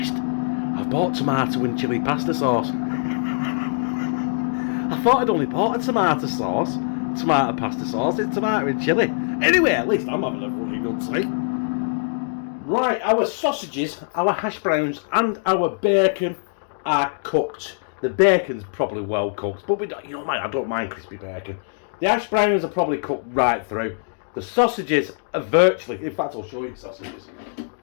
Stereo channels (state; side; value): silent; right; digital silence